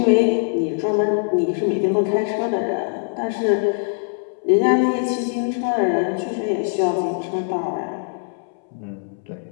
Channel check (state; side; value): silent; right; 64 dB below the other